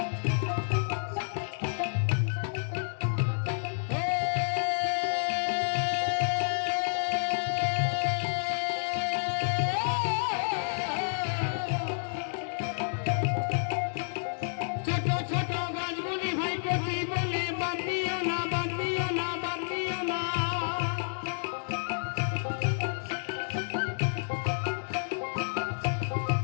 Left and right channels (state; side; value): silent; right; digital silence